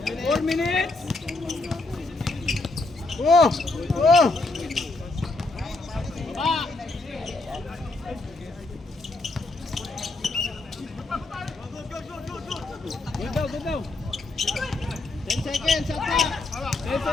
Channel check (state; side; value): quieter; right; 3.2 dB